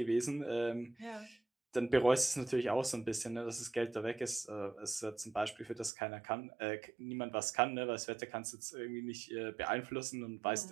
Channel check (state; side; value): drops out; left; at 5.9 s